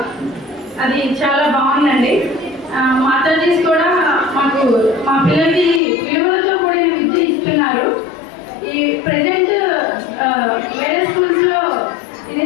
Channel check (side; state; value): right; drops out; at 5.8 s